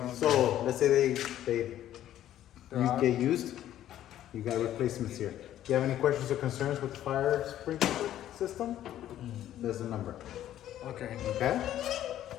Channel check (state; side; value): quieter; right; 12.1 dB